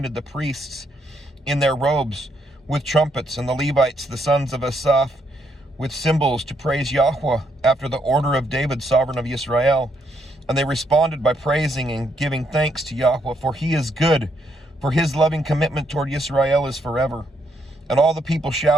the priests in their robes with trumpets, and the Levites, the sons of Asaph, with cymbals to praise Yahweh after the order of David, sovereign of Israel. And they responded by praising and giving thanks to Yahweh, for he is good, for his loving commitment toward Israel is forever. And all the people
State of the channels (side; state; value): both; normal; correlation 0.75